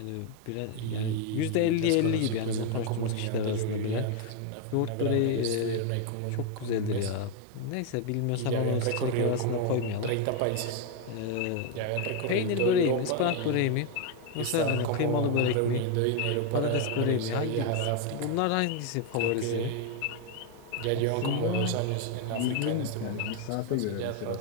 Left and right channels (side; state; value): both; different; correlation 0.01